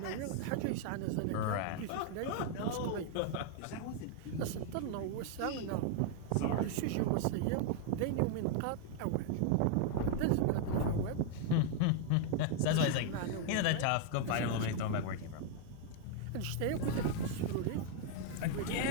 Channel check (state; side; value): different; both; correlation 0.00